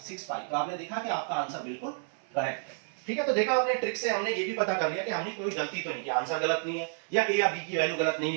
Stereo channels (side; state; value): left; silent; 56 dB below the other